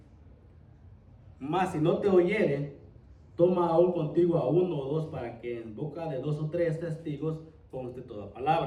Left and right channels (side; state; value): both; identical; correlation 1.00